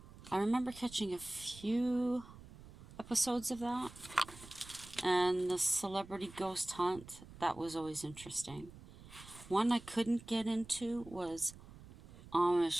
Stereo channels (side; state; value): right; noise; rumble, 18 dB below the sound